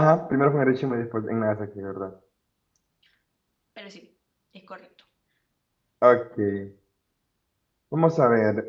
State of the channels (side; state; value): both; identical; correlation 1.00